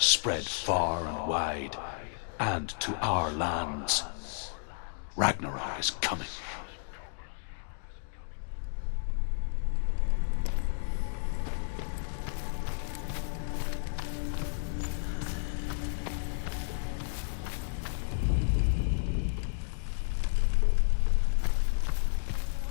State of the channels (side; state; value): right; silent; digital silence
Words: far and wide, and to our lands. Ragnarok is coming.